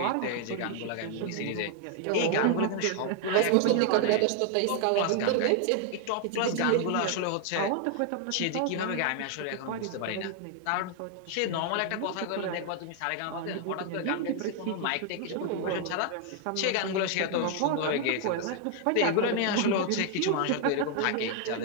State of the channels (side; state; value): both; different; correlation 0.00